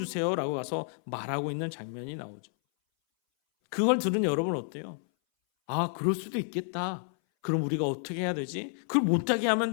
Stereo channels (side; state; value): right; silent; 58 dB below the other